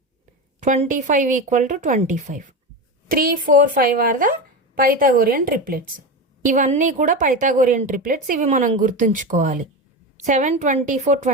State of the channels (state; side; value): normal; both; correlation 0.21